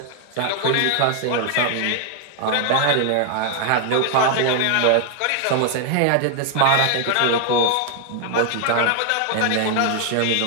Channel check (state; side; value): different; both; correlation 0.00